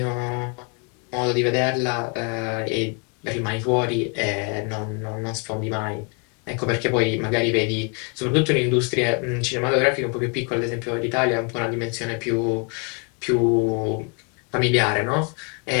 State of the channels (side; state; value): right; quieter; 36.4 dB